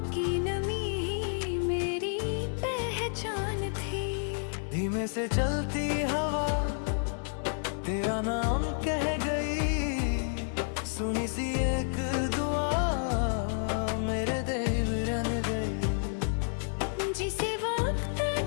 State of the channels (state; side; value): silent; right; 58 dB below the other